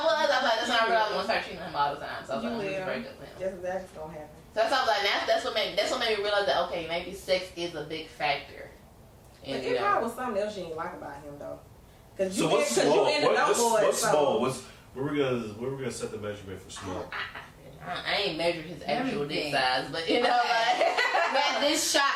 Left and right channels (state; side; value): identical; both; correlation 1.00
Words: was like, that's why I realized I'm gonna start cheating on him all the time. So I was like, I'm gonna break up with him. That's exactly what's gonna happen. So that's why I was like, that's what made me realize that okay, maybe sex is a big factor. And it probably was something else you didn't like about him though. Cause so what's small? What's small? Where we gonna set the measurement for small? I ain't measured his actual dick size, but you know, like man, this